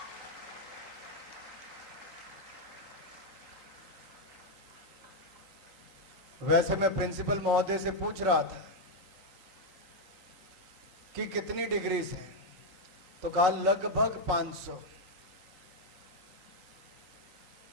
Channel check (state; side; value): late; left; 3.9 ms